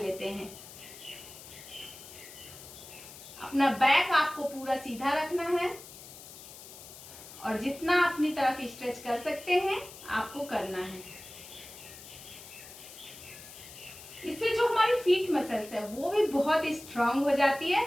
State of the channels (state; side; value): noise; left; hiss, 16 dB below the sound